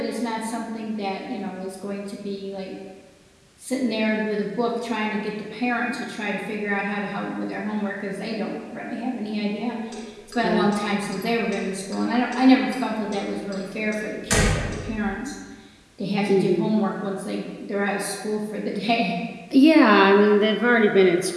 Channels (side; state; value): both; identical; correlation 1.00